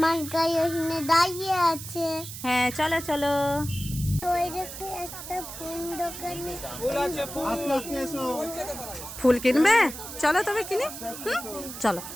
গাড়ি ওখানে দাঁড়িয়ে আছে। হ্যাঁ চলো চলো। ওই দেখো একটা ফুল দোকানে। ফুল কিনবে? চলো তবে কিনি। চলো।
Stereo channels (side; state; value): right; noise; hiss, 10 dB below the sound